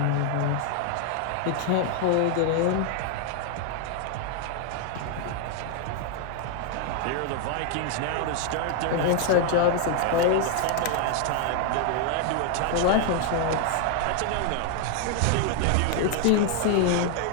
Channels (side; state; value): both; different; correlation 0.00